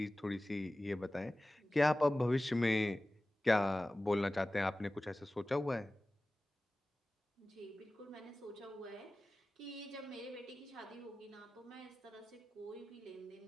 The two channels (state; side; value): normal; both; correlation 0.97